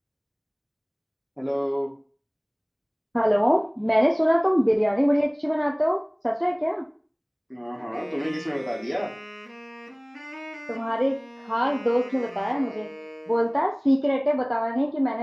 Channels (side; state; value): both; identical; correlation 1.00